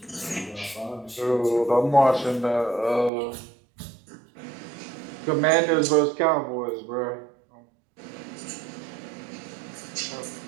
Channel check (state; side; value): drops out; left; at 3.1 s